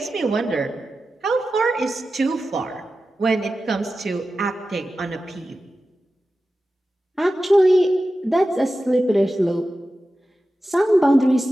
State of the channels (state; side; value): normal; both; correlation 0.93